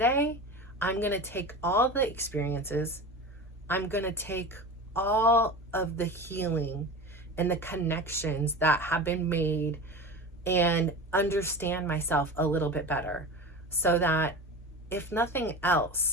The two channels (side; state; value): both; normal; correlation 0.30